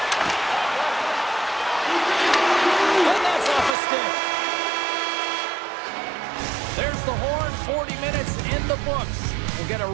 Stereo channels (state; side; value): drops out; left; at 3.7 s